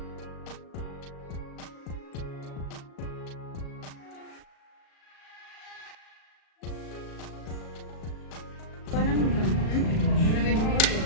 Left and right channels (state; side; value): late; right; 37 ms